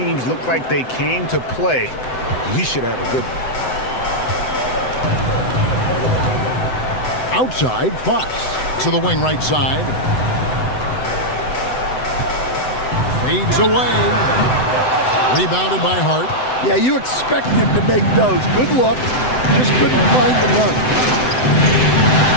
look like they came to play. We should have a good one. Outside, Fox to the wing right side. Fades away. Rebounded by Hart. Yeah, you expect him to make those. Good look. Just couldn't find the run.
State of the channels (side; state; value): right; late; 7.9 ms